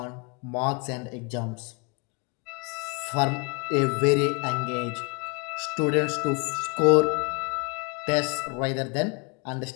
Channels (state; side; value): quieter; right; 30.7 dB